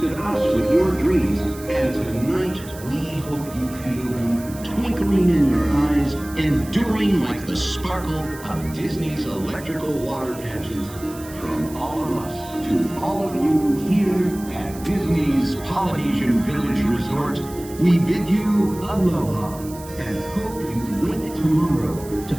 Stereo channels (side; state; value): right; noise; hiss, 18 dB below the sound